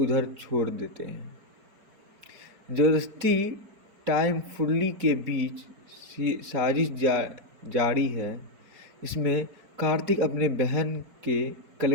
छोड़ देते हैं। ज़बरदस्ती टाइम फुल्ली के बीच साजिश जारी है। इसमें कार्तिक अपने बहन के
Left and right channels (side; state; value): left; late; 4.6 ms